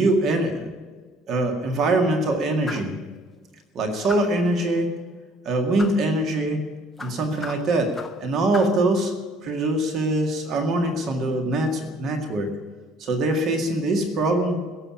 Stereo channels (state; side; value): normal; both; correlation 0.58